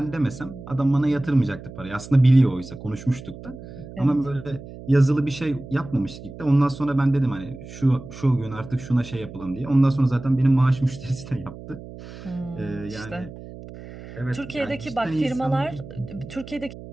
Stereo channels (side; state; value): right; noise; hum, 14 dB below the sound